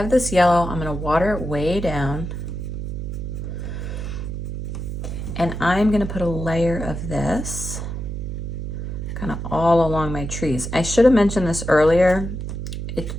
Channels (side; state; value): right; noise; hum, 5 dB below the sound